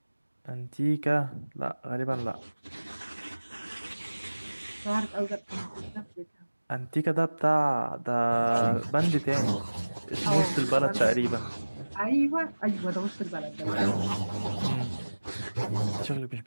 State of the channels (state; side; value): inverted; both; correlation -1.00